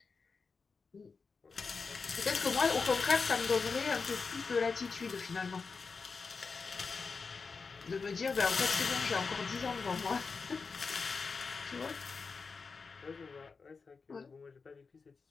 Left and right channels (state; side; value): quieter; right; 4.8 dB